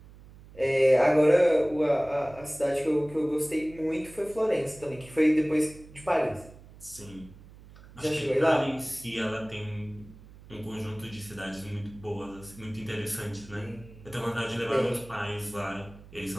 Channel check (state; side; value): noise; right; hum, 20 dB below the sound